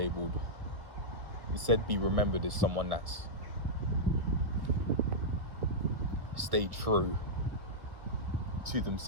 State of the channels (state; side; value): late; left; 1.6 ms